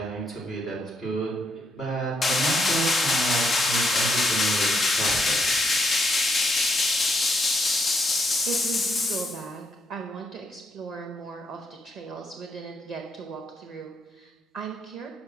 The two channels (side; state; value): both; normal; correlation 0.75